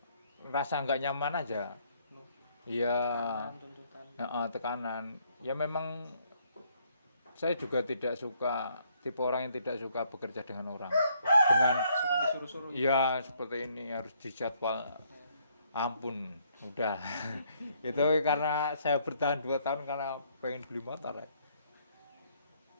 rasa nggak nyaman aja. Iya, tekanan. Ya memang saya juga tidak suka, tipe orang yang tidak suka bekerja dengan orang, dengan Suka disuruh-suruh. ya seperti ini harus dijadwal. Ampun, udah. Itu karena saya bertahan 2 tahun karena pengen beli motor ya.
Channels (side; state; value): both; inverted; correlation -0.68